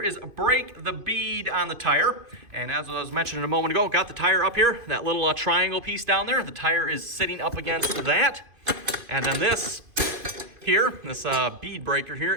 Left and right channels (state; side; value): late; left; 2.5 ms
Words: is break the bead on the tire. And as I was mentioning a moment ago, got the tire up here, that little triangle piece down there. The tire is sitting up against that. And then this here, this bead breaker here,